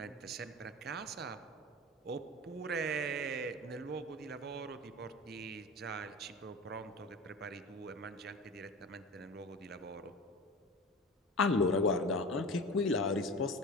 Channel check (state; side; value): normal; both; correlation 0.34